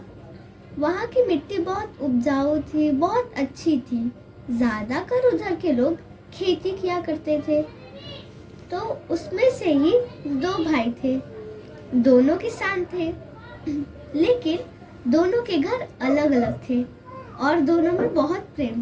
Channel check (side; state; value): both; identical; correlation 1.00